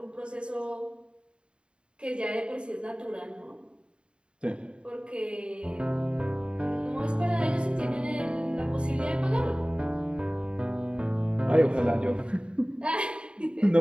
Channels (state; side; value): late; left; 0.052 ms